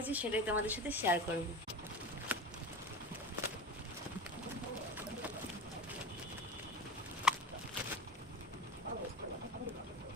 সেটাই তোমাদের সাথে শেয়ার করবো।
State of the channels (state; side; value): normal; both; correlation 0.29